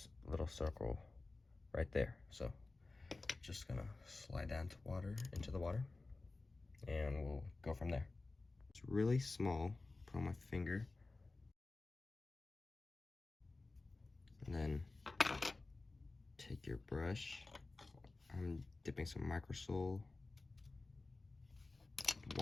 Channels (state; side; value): quieter; right; 3.4 dB